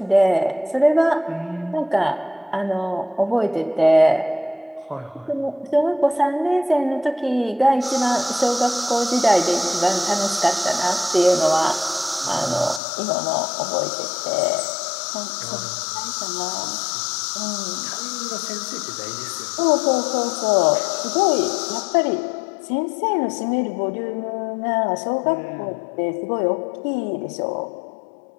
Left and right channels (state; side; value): drops out; right; at 12.8 s